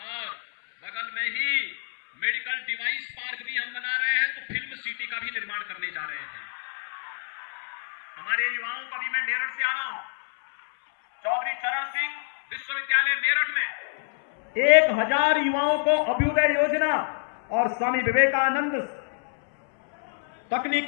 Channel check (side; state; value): right; silent; 60 dB below the other